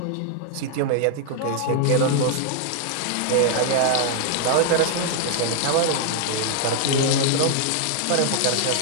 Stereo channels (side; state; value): both; different; correlation 0.00